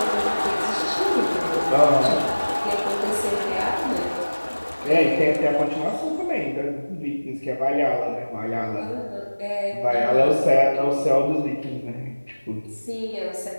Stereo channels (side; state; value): both; inverted; correlation -1.00